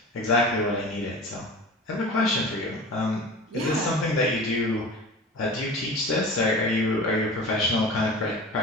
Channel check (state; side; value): normal; both; correlation 0.36